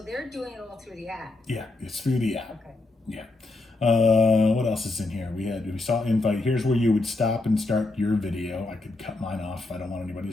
they're doing it all through the app. Yeah, it's through the app. Okay. Yeah. What else is in here? We saw invite. Here's where you would stop and start your video. I could cut mine off if I don't want anybody to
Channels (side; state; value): right; quieter; 3.1 dB